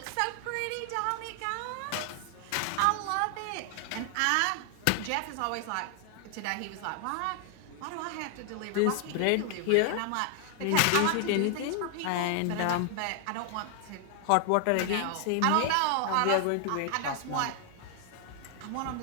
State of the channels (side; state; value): both; different; correlation 0.00